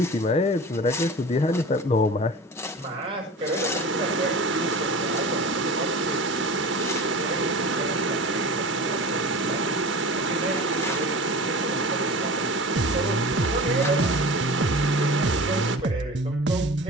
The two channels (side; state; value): both; normal; correlation 0.35